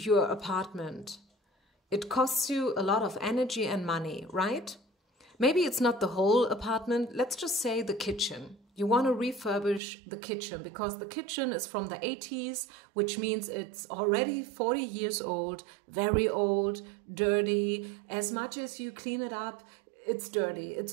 apartment, it costs you a lot of energy and money, right? Maybe it's not the whole apartment. Let's just say the kitchen. You want to refurbish the kitchen because the kitchen is from the 80s, which means it's already 40 years old, very old, dirty. As much as you clean it up, it's dirty,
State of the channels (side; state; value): left; drops out; at 9.8 s